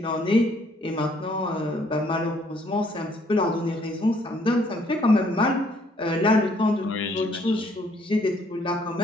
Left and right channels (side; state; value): both; normal; correlation 0.65